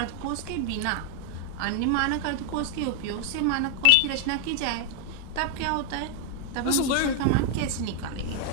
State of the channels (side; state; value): both; different; correlation 0.00